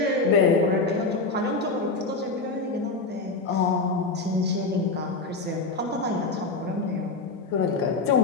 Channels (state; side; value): quieter; right; 3.6 dB